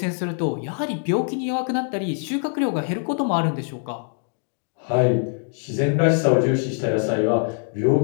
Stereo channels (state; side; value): silent; right; 57 dB below the other